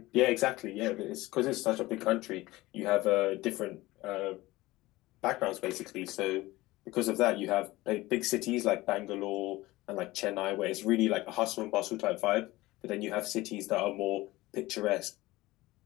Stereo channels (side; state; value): right; quieter; 19.0 dB